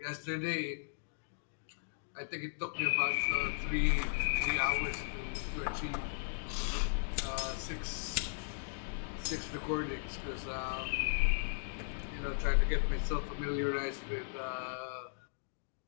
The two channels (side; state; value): right; silent; digital silence